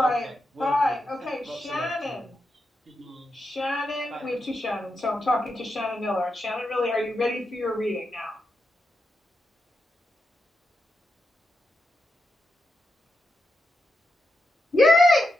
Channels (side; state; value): both; normal; correlation 0.86